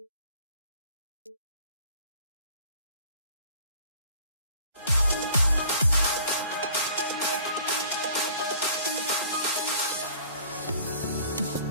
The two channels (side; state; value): both; inverted; correlation -0.52